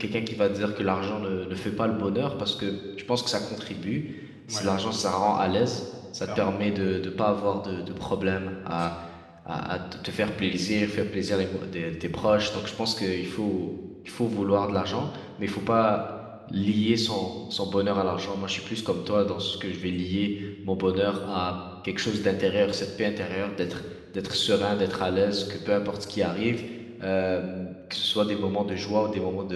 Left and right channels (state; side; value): identical; both; correlation 1.00